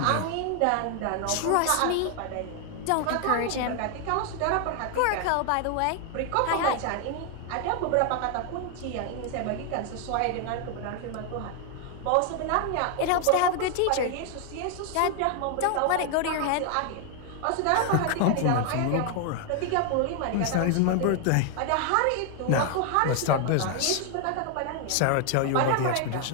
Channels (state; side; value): different; both; correlation 0.00